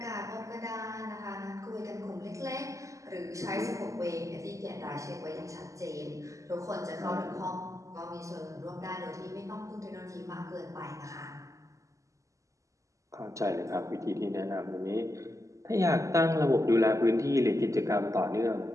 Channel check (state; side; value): late; left; 0.16 ms